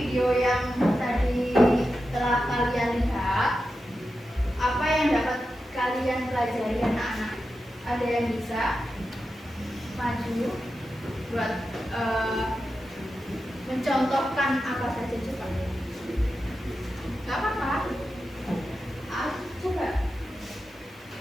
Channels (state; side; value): normal; both; correlation 0.90